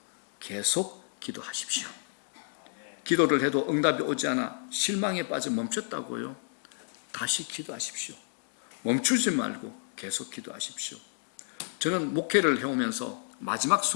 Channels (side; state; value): right; silent; 57 dB below the other